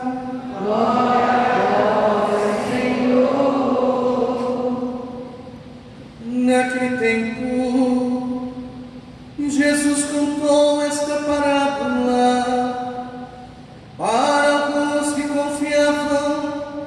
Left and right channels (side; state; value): both; identical; correlation 1.00